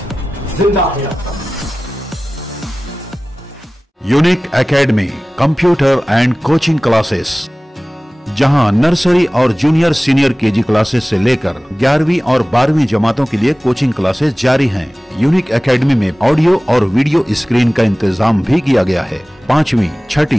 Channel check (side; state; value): both; normal; correlation 0.97